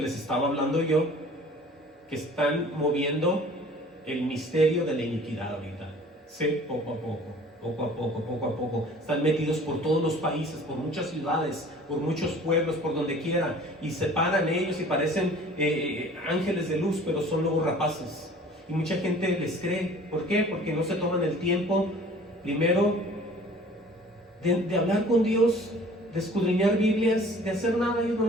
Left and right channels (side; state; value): both; normal; correlation 0.49